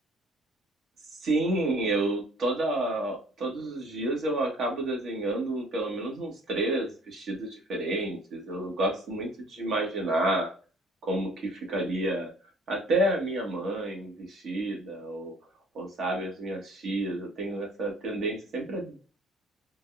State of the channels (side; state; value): both; normal; correlation 0.54